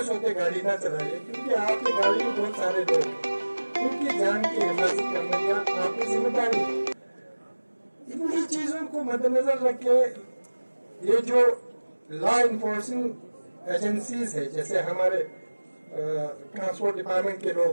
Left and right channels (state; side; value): inverted; both; correlation -1.00